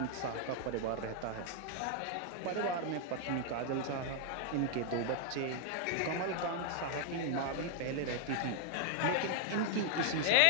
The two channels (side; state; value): both; different; correlation 0.00